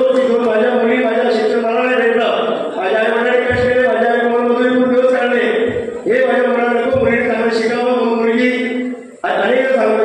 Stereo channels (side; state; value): both; identical; correlation 1.00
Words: की दोन माझ्या मुली माझ्या शिक्षण मला नाही भेटलं, माझ्या आई वडिलांनी कष्ट केले, माझ्या आई मुलांमधून खूप दिवस काढले, हे माझ्या मुलांना नको, मुलीने चांगलं शिकावं. मुलगी अनेक